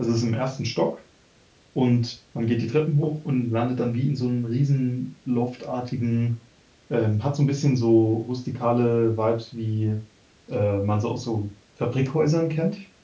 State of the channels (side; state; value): both; identical; correlation 1.00